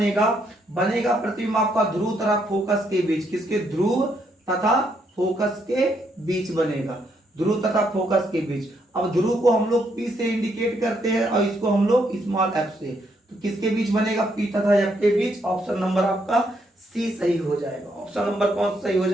बनेगा प्रतिबिंब आपका ध्रुव तथा फोकस के बीच। किसके, ध्रुव तथा फोकस के बीच बनेगा, ध्रुव तथा फोकस के बीच। अब ध्रुव को हम लोग P से इंडिकेट करते हैं और इसको हम लोग स्मॉल f से, तो किसके बीच बनेगा, P तथा F के बीच। ऑप्शन नंबर आपका सी सही हो जाएगा। ऑप्शन नंबर कौन सही हो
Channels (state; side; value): normal; both; correlation 0.75